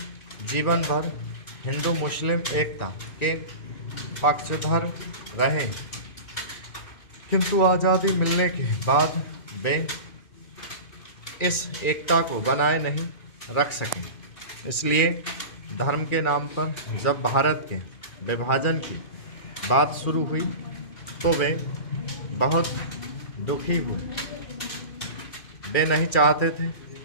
जीवन भर हिंदू मुस्लिम एकता के पक्षधर रहे, किंतु आज़ादी मिलने के बाद वे इस एकता को बनाए नहीं रख सके। इसलिए धर्म के नाम पर जब भारत के विभाजन की बात शुरू हुई तो वे बहुत दुखी हुए। वे नहीं चाहते थे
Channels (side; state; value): right; late; 2.4 ms